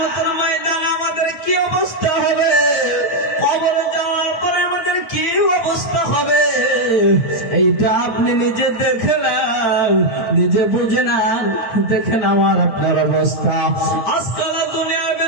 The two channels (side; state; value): right; late; 8.9 ms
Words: ময়দানে আমাদের কি অবস্থা হবে, কবরে যাওয়ার পরে আমাদের কি অবস্থা হবে, এইটা আপনি নিজে দেখে নেন, নিজে বুঝে নেন, দেখেন আমার আপনার অবস্থা। আজকাল দুনিয়ার